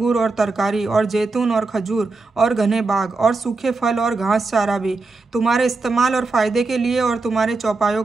और तरकारी और जैतून और खजूर और घने बाग और सूखे फल और घास चारा भी तुम्हारे इस्तेमाल और फ़ायदे के लिए और तुम्हारे चौपायों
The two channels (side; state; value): left; quieter; 3.7 dB